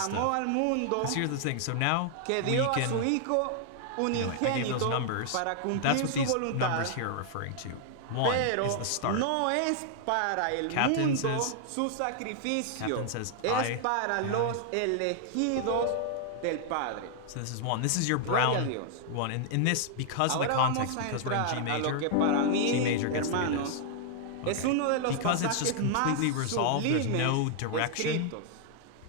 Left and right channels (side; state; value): both; different; correlation 0.00